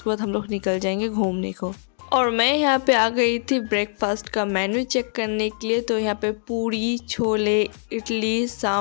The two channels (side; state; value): right; silent; 60 dB below the other